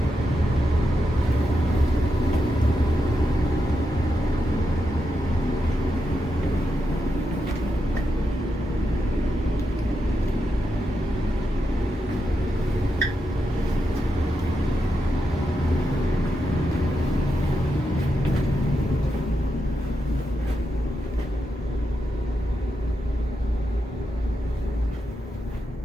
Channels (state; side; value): normal; both; correlation 0.85